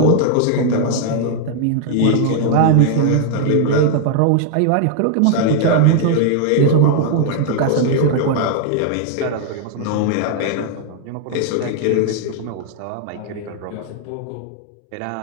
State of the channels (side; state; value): both; different; correlation 0.00